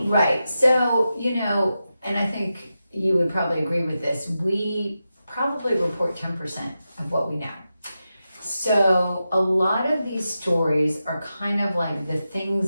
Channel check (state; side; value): inverted; both; correlation -0.90